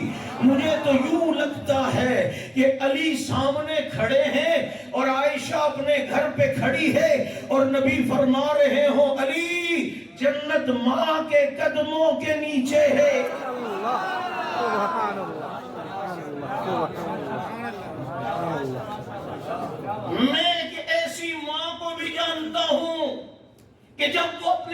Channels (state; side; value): identical; both; correlation 1.00